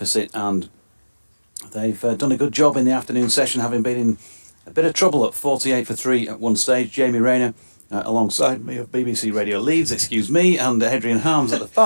and they've done a good job in the afternoon session, having been in a bit of trouble at 48 for 3 at one stage. Jamie Rayner alongside me of BBC Radio Leeds, and Adrian Harms at the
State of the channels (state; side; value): inverted; both; correlation -1.00